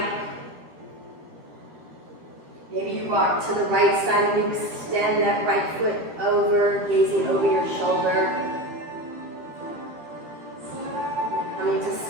Maybe you rock to the right side and you extend that right foot over, gazing over your shoulder. Coming to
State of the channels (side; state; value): left; late; 13 ms